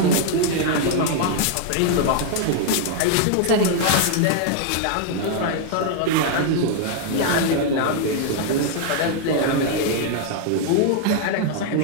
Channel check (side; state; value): both; different; correlation 0.00